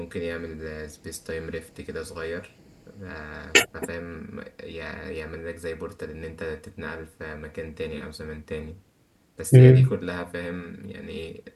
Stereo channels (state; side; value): identical; both; correlation 1.00